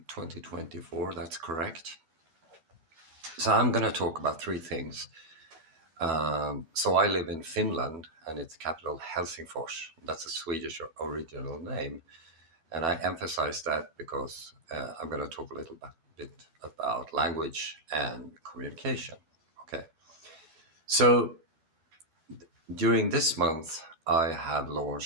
2024, that's correct. So I'm going to talk about three things. So I live in Finland and its capital Helsingfors. That's a Swedish original name. And I emphasize that because I'm going to talk a little bit about language and communication. Okay. So during this month, I have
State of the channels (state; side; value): late; left; 12 ms